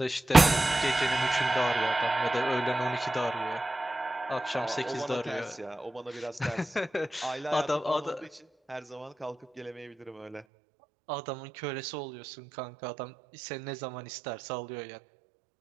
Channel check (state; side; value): drops out; left; at 10.5 s